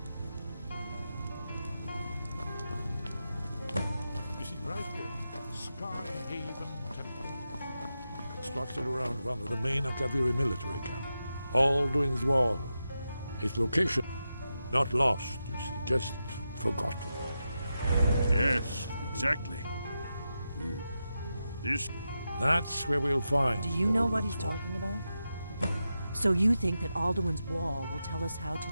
You see, right here, Sky Haven Temple. Constructed around one of the main Akaviri military camp. Alduin's Wall. Its location, not lost, you see, just forgotten. Yes, exactly. This... That's where we'll find. Do you know what Alduin's he's Wall. talking about? So you think that Alduin's Wall will tell us how to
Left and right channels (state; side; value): inverted; both; correlation -0.89